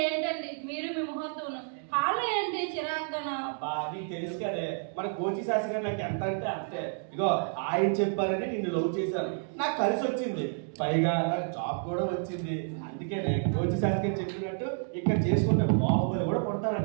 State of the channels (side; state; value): left; silent; 58 dB below the other